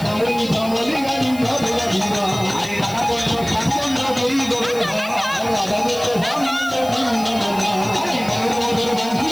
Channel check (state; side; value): noise; left; hiss, 17 dB below the sound